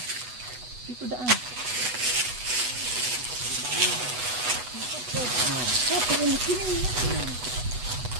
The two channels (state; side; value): late; left; 8.1 ms